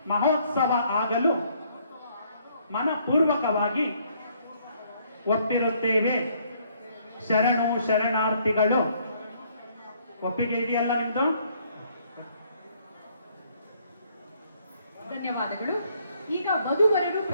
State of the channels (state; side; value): inverted; both; correlation -0.66